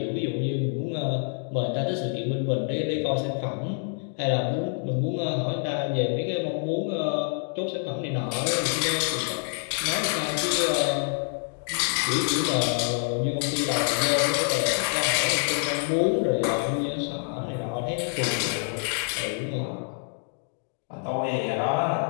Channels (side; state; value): right; silent; 59 dB below the other